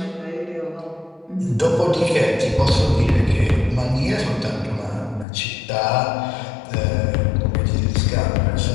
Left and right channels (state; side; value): drops out; right; at 5.2 s